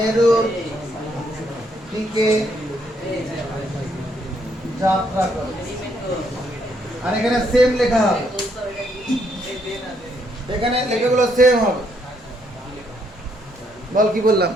দিকে যাত্রা করে। আর এখানে সেম লেখা হবে, এখানে লেখাগুলো সেম হবে। বল কি বললাম?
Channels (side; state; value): both; normal; correlation 0.72